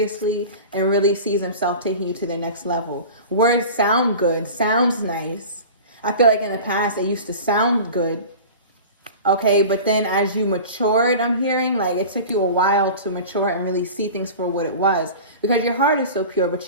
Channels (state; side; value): inverted; both; correlation -0.36